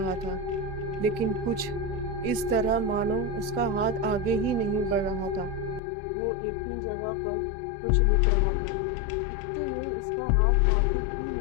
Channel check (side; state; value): right; drops out; at 5.8 s